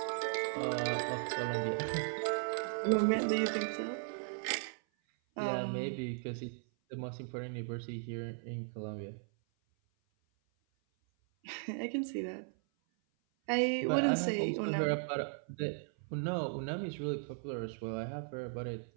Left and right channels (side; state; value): left; silent; 53 dB below the other